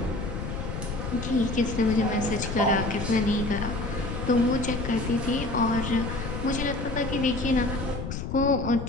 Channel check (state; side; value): noise; left; rumble, 5 dB below the sound